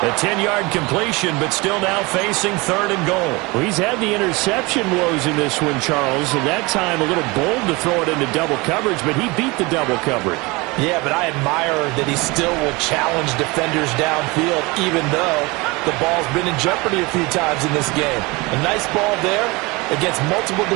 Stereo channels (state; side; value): quieter; left; 24.7 dB